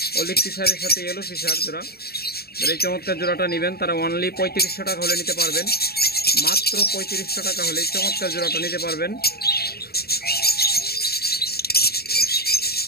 অলিভ ফিশারের সাথে ইয়েলো ফিশার জোড়া। যারা এই চমৎকার জোড়াটা নেবেন তারা অনলি 3500 টাকা হলে নিতে পারবেন, মাত্র 3500 টাকা হলে এই চমৎকার জোড়াটা নিতে পারবেন।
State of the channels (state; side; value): late; right; 0.45 ms